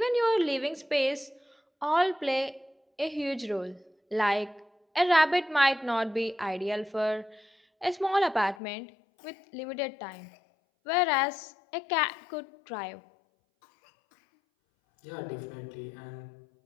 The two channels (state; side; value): drops out; right; at 8.6 s